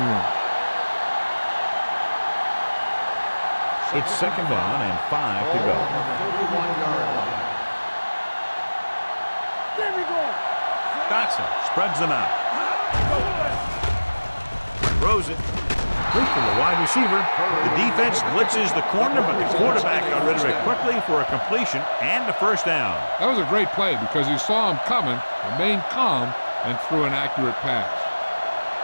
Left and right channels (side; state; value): both; inverted; correlation -1.00